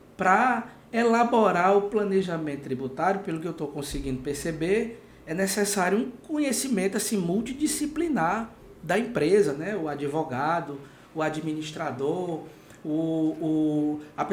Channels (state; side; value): identical; both; correlation 1.00